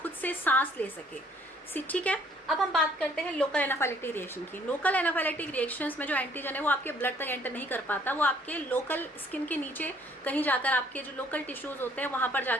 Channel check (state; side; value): normal; both; correlation 0.61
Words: से सांस ले सके। ठीक है, अब हम बात करते हैं लोकल एनाफाइलेक्टिक रिएक्शन की। लोकल एनाफाइलेक्टिक रिएक्शंस में जो एंटीजन है वो आपके ब्लड तक एंटर नहीं कर पाता, वो आपके लोकल स्किन के नीचे कहीं जाकर आपके जो लोकल टिश्यूज होते हैं वहां पर